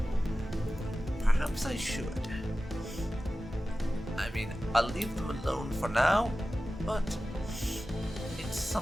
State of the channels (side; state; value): both; normal; correlation 0.95